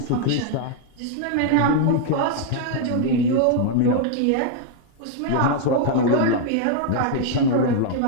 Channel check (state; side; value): different; both; correlation 0.00